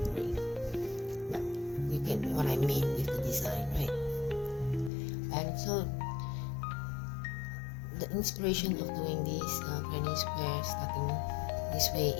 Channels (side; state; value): right; drops out; at 4.9 s